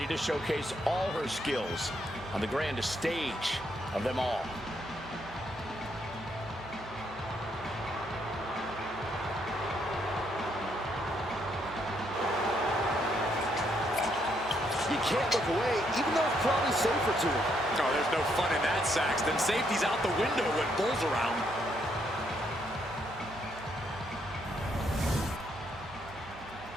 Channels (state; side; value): noise; right; hum, 19 dB below the sound